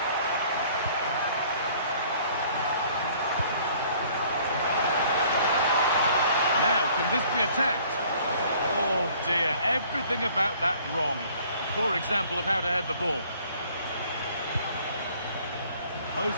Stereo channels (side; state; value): both; inverted; correlation -0.56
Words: Now, can this be attacked? Oh dear, everything about that wrong. Poor example of how to head the ball.